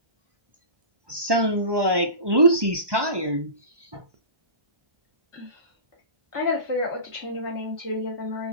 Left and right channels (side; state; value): left; late; 1.2 ms